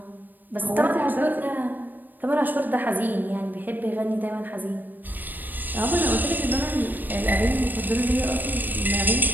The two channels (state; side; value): late; left; 0.090 ms